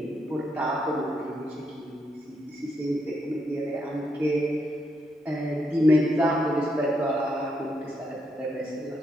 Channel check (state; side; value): normal; both; correlation 0.78